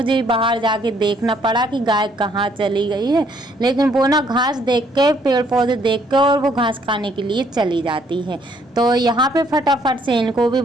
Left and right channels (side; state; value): both; normal; correlation 0.67